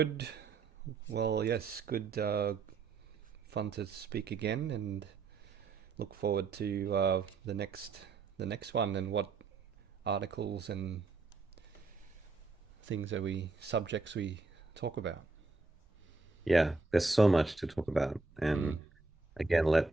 Well, yes, good, fun to speak again, and look forward to the next one, and what articles and things that we subjects we talk about. Yeah, there's so much to talk about. Mm. And again, let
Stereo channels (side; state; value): left; quieter; 4.1 dB